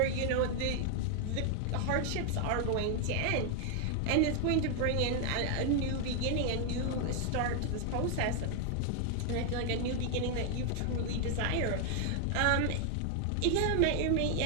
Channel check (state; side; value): different; both; correlation 0.00